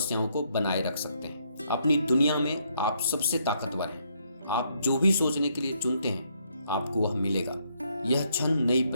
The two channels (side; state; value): both; inverted; correlation -0.73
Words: को बनाए रख सकते हैं। अपनी दुनिया में आप सबसे ताकतवर हैं। आप जो भी सोचने के लिए चुनते हैं आपको वह मिलेगा। यह क्षण नई